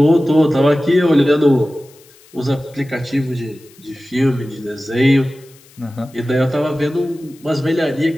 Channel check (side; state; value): left; noise; hiss, 27 dB below the sound